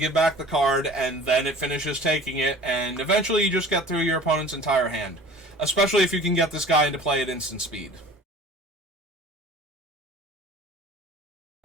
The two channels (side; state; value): both; normal; correlation 0.44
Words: back the card, and then it finishes taking it, and eventually you just get through your opponent's entire hand. Especially if you can get this guy into play at instant speed.